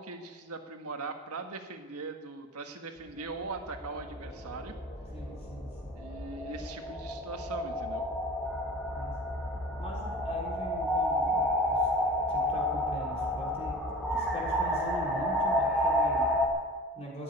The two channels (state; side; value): normal; both; correlation 0.38